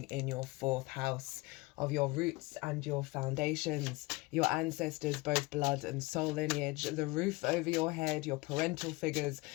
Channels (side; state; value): right; quieter; 23.0 dB